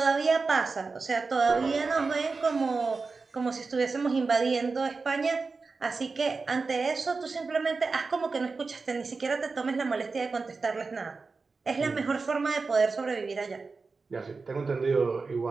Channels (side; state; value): left; quieter; 4.3 dB